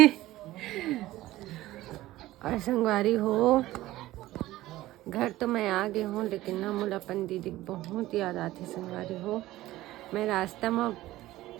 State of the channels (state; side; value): quieter; left; 16.4 dB